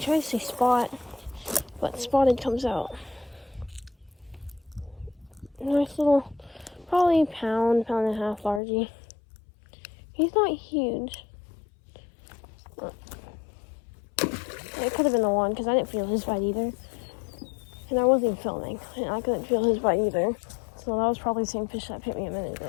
to say spot, but spotted comes out. Nice little, probably pound and a half largie. He's not huge. It could have been the one, because I didn't feel his bite either. And I wasn't even filming, and I couldn't feel his bite either. So that was probably the same fish that hit me a minute ago.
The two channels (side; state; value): right; drops out; at 8.6 s